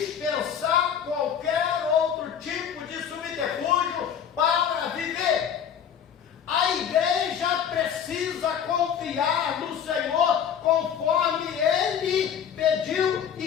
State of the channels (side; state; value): right; quieter; 8.4 dB